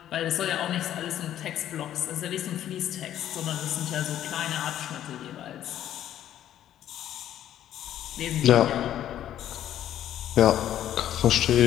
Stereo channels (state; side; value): quieter; right; 11.5 dB